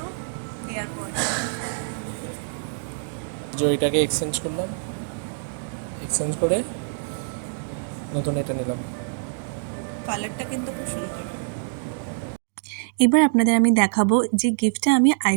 এয়ারপড। যে ওইটাকে এক্সচেঞ্জ করলাম, এক্সচেঞ্জ করে নতুন এটা নিলাম। কালারটা কিন্তু খুব সুন্দর। এবার আপনাদের আমি দেখাবো যে গিফটটা আমি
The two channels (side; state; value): left; silent; digital silence